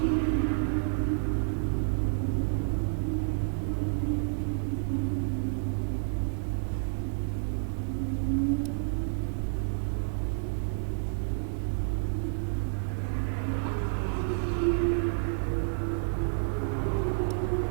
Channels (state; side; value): silent; left; digital silence